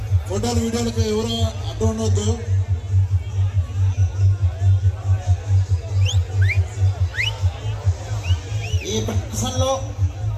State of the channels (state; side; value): identical; both; correlation 1.00